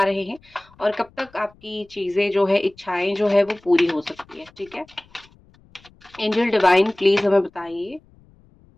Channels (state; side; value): noise; left; rumble, 29 dB below the sound